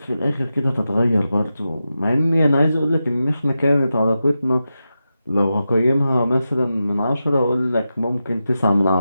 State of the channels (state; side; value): inverted; both; correlation -0.91